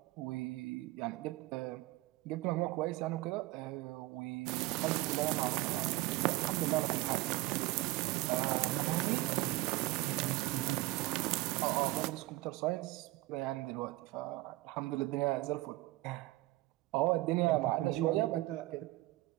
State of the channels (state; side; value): quieter; left; 19.0 dB